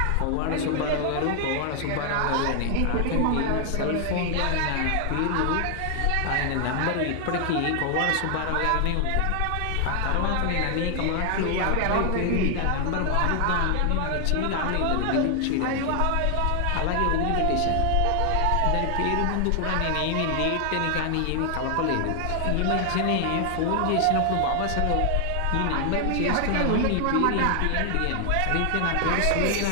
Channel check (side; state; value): both; different; correlation 0.00